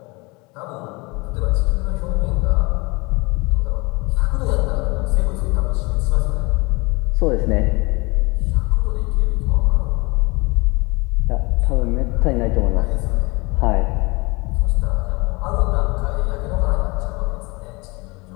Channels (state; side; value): quieter; right; 26.1 dB